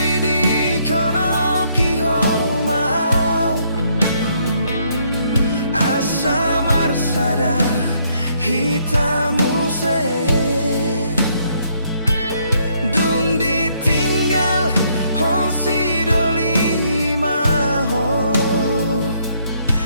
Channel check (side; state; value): both; inverted; correlation -0.70